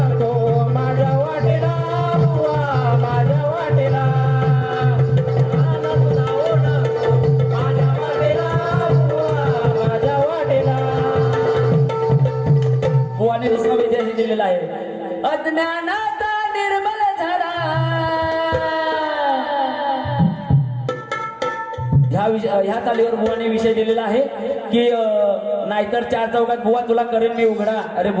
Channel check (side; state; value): both; identical; correlation 1.00